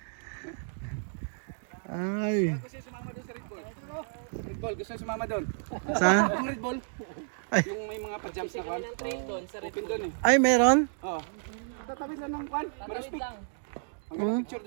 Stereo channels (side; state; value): left; silent; digital silence